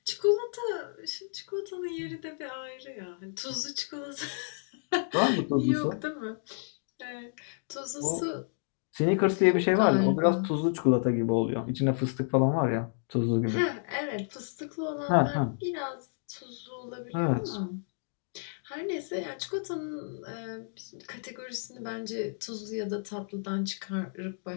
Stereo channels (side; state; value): right; silent; digital silence